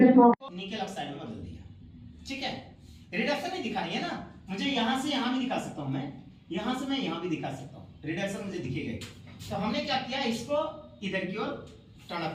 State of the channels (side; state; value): both; identical; correlation 1.00